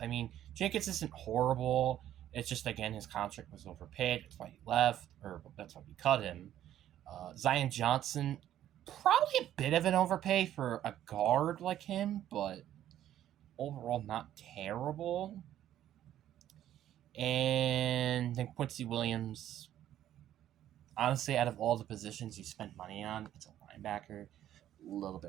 Jenkins isn't horrible. It's just, again, his contract was overpaid. That's why he left, or that's why we cut him. Zion Johnson, probably a bit of an overpay for a guard like him, but overall not terrible. And then Quincy Williams, honestly, out of all the positions you spent money on, it's a linebacker. A little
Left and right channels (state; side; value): quieter; left; 11.8 dB